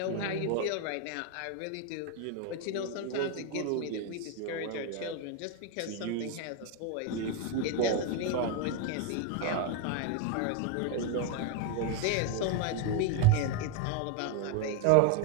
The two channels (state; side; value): different; both; correlation 0.01